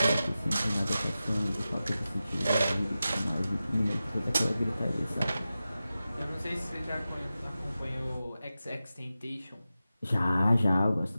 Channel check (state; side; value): inverted; both; correlation -0.94